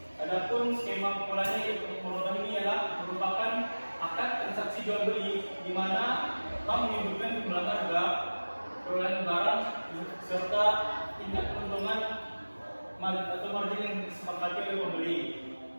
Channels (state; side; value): inverted; both; correlation -1.00